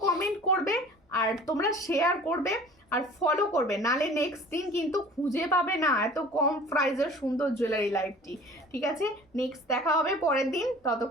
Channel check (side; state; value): both; normal; correlation 0.45